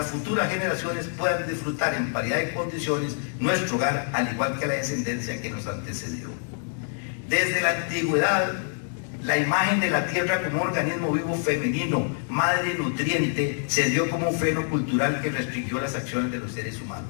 futuras generaciones puedan disfrutar en paridad de condiciones nuestro hogar, al igual que la descendencia que nos antecedió. Desde la antigüedad, la imagen de la tierra como un organismo vivo femenino, madre nutriente, se dio como un freno cultural que restringió las acciones de los seres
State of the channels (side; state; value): right; silent; 61 dB below the other